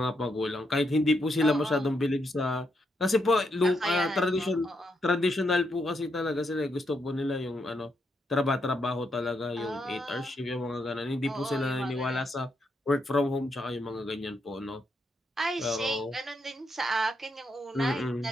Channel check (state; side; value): normal; both; correlation 0.80